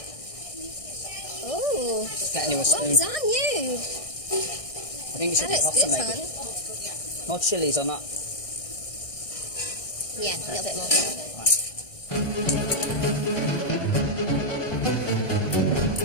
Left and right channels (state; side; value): late; right; 1.6 ms